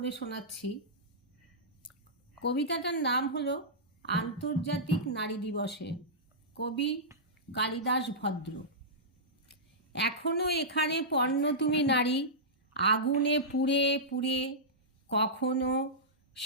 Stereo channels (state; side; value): normal; both; correlation -0.14